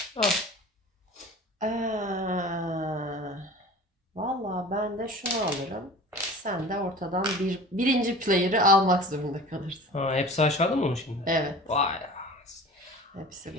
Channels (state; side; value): normal; both; correlation 0.39